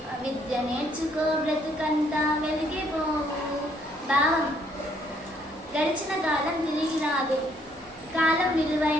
విద్య నేర్చుకో బ్రతుకంతా వెలిగిపోవు. భావం: గడిచిన కాలం తిరిగి రాదు. కాలం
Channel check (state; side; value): normal; both; correlation 0.68